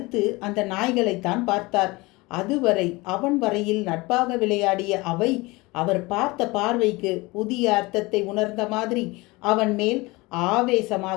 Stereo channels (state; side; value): quieter; right; 23.1 dB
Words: அந்த நாய்களைத்தான் பார்த்தார். அதுவரை அவன் வரையில் நட்பாக விளையாடிய அவை அவர் பார்த்த பார்வைக்கு புதிய அர்த்தத்தை உணர்ந்த மாதிரி அவன் மேல்